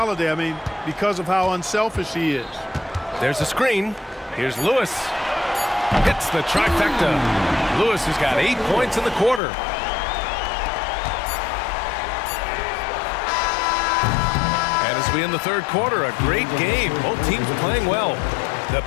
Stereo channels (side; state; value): right; drops out; at 9.4 s